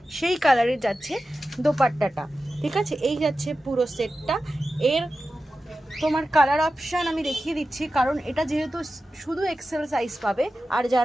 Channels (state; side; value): normal; both; correlation 0.93